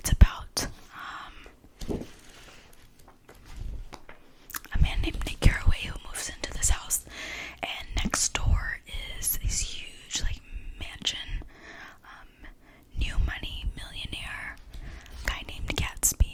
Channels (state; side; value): identical; both; correlation 1.00